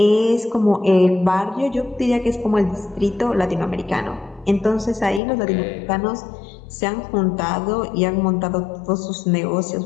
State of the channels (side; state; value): right; drops out; at 5.2 s